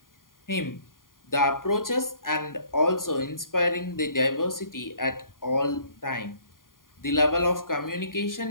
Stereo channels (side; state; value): right; late; 0.90 ms